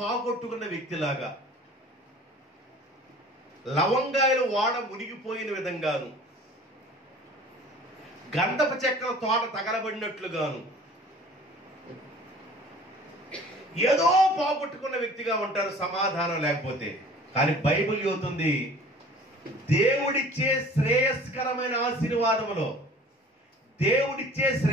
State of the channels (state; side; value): normal; both; correlation 0.47